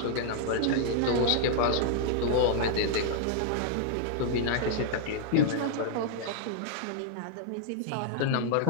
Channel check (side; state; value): both; different; correlation -0.01